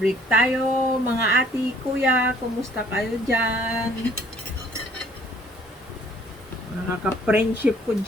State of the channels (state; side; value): normal; both; correlation 0.59